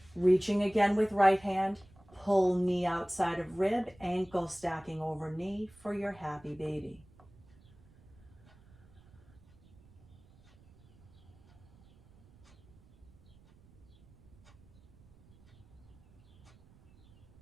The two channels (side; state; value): right; noise; rumble, 26 dB below the sound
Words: Reaching again with right hand, pull knee outside of rib, ankle stacking over knee for your happy baby.